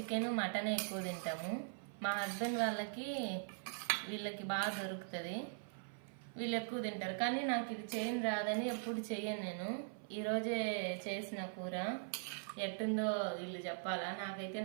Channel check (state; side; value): silent; left; 50 dB below the other